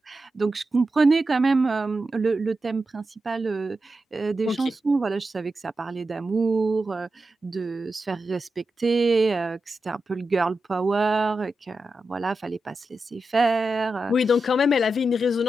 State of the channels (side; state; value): both; normal; correlation 0.90